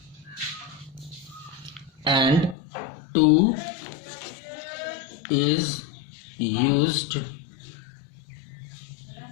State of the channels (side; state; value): right; drops out; at 2.6 s